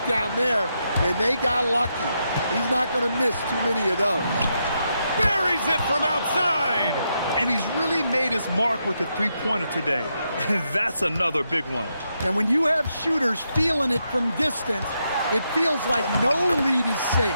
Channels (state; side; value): inverted; both; correlation -0.82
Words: there, and they got lucky. He's not going to miss too many of those. Buries it from outside. And he's really made his mark with the three-pointer today. And that's another big one. And when you have shooters feeling it from distance, it feels like no lead is